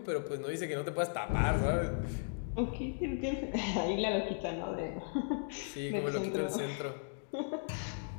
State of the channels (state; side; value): silent; right; digital silence